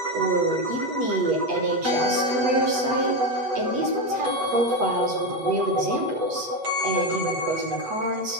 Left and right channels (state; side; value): late; left; 8.2 ms